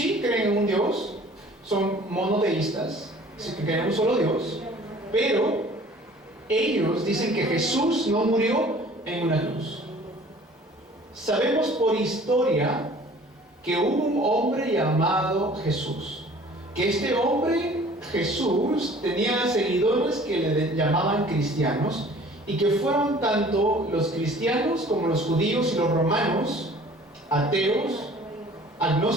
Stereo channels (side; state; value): both; normal; correlation 0.50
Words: creen en un Dios, son monoteístas, creen en un solo Dios, pero ellos dicen que Jesús no murió en una cruz. Sabemos por historia que hubo un hombre llamado Jesús, que este hombre Jesús tenía seguidores que le llamaban cristianos, y que fueron tanto los cristianos como los judíos y los romanos, ateos,